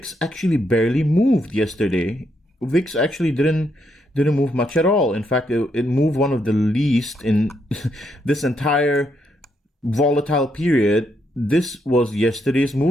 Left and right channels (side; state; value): both; normal; correlation 0.77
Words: actually barely moved yesterday. VIX actually didn't move much at all. In fact, it moved one of the least in this entire volatile period. This was yesterday's